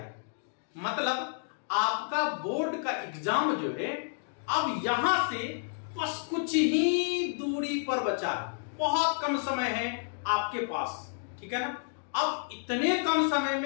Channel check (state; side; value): silent; right; digital silence